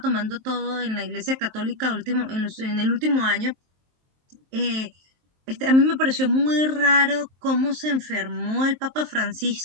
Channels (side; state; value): left; late; 23 ms